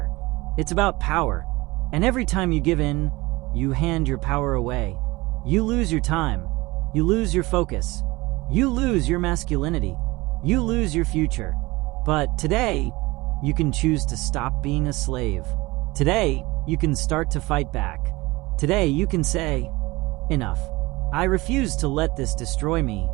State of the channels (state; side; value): quieter; left; 21.7 dB